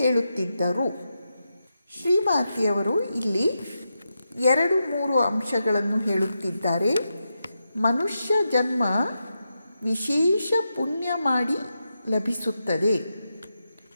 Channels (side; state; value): both; inverted; correlation -0.87